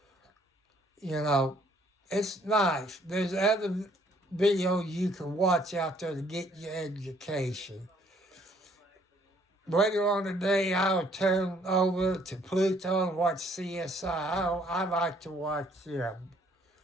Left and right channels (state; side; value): normal; both; correlation 0.63